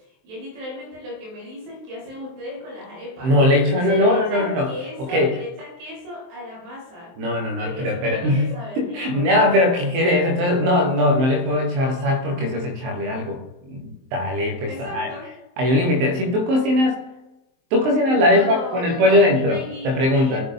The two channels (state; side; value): late; left; 23 ms